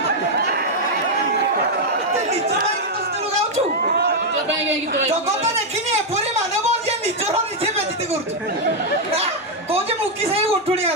ନିଜ ପାଇଁ ଗୀତ ସେତେବେଳେ ଗାଉଛୁ ଜଗତ ଦେଖିନି ଏପରି ମାନବ ଯେ ନିଜର ନିଜେ ବେଜିତି କରୁଛି କହୁଛି ମୁକି ସେଇ ଉଠୁଣି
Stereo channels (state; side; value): normal; both; correlation 0.00